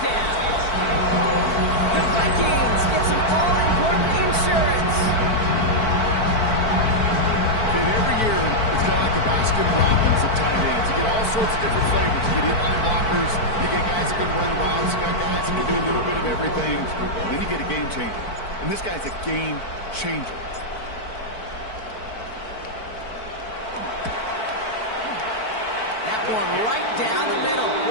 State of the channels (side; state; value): right; late; 4.5 ms